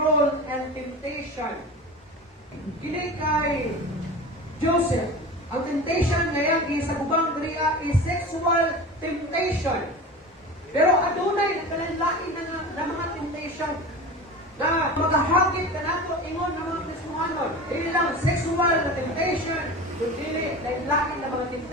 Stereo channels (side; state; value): both; normal; correlation 0.32